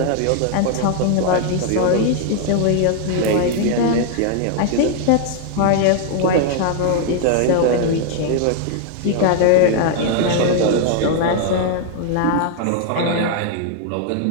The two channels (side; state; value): both; different; correlation 0.00